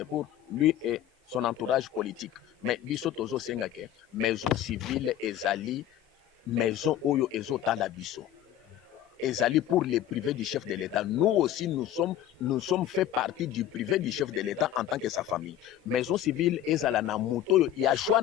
pour lui et son entourage politique mais biso tozo senga que maison civile ezali maison oyo ezotala biso ezali pour les privés du chef de l'État. Nous aussi, nous sommes fait partie du privé du chef de l'État en tant que sa famille. Maison civile, ezala na moto, il y a choix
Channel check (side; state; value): right; quieter; 11.6 dB